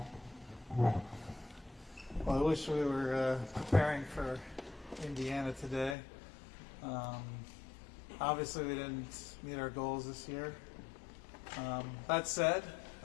I wish we were preparing for Indiana today. Obviously, we didn't meet our goals this year. That said,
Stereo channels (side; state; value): right; drops out; at 6.0 s